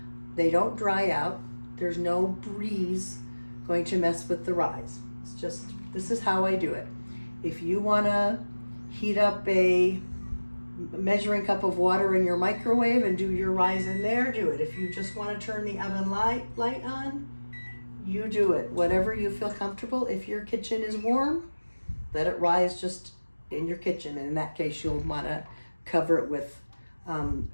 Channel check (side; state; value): both; inverted; correlation -1.00